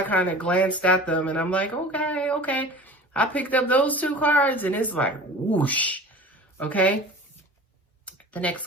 kind of glanced at them and I'm like, okay, okay. I picked up those 2 cards and it's like, whoosh, okay? The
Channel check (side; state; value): both; normal; correlation 0.39